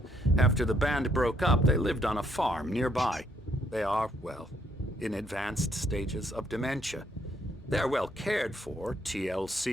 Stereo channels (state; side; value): normal; both; correlation 0.70